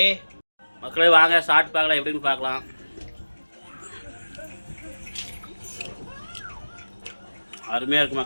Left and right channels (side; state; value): both; inverted; correlation -1.00